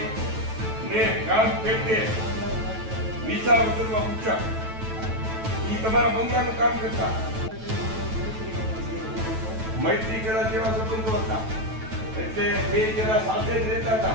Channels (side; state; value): left; late; 9.1 ms